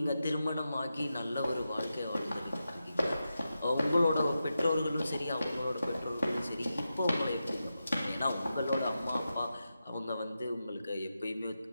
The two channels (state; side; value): inverted; both; correlation -0.90